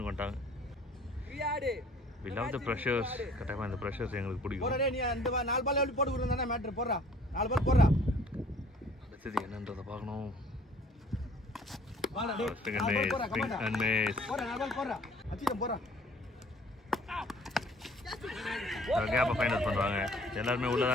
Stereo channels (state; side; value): normal; both; correlation 0.54